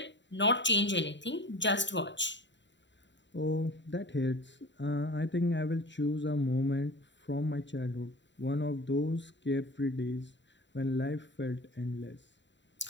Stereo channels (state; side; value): late; right; 0.53 ms